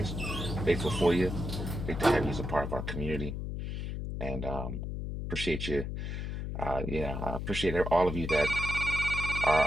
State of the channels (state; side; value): noise; left; hum, 4 dB below the sound